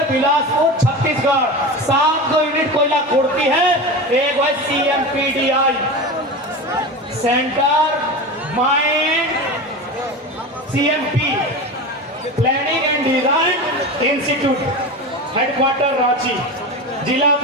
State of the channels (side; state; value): both; normal; correlation 0.26